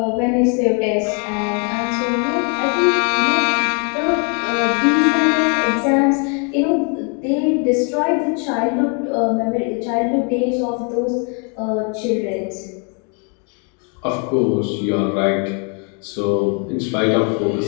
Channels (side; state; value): right; quieter; 37.5 dB